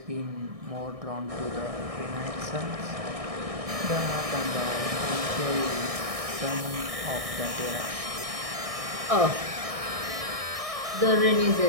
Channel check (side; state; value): left; late; 1.6 ms